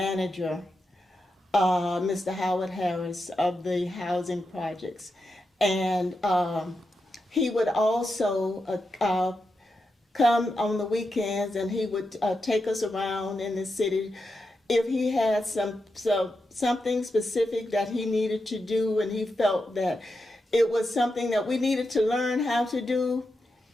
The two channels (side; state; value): both; normal; correlation 0.87